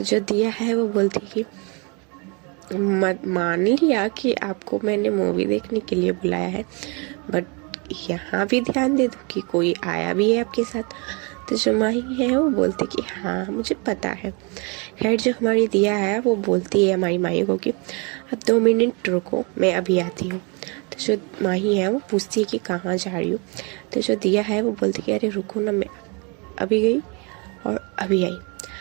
जो दिया है वो बोलती है कि मान लिया कि आपको मैंने मूवी देखने के लिए बुलाया है, बट यहाँ भी ध्यान दे दो कि कोई आया भी है आपके साथ। तो जो माही है वो बोलती कि हाँ मुझे पता है। खैर जो हमारी दिया है वो बोलती है हमारी माही को कि अब 2 मिनट रुको, मैं अभी आती हूँ। तो जो माही है वो पूछती है कि कहाँ जा रही हो। तो जो दिया है वो बोलती कि अरे रुको ना, मैं अभी गई और अभी आई।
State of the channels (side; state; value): left; quieter; 32.2 dB